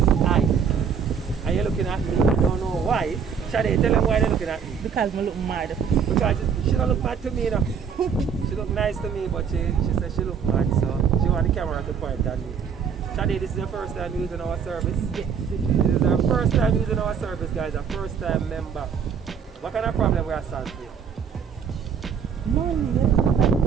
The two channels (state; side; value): quieter; left; 6.9 dB